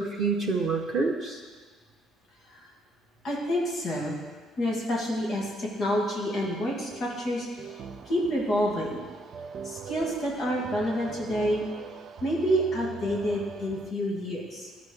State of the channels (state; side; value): normal; both; correlation 0.70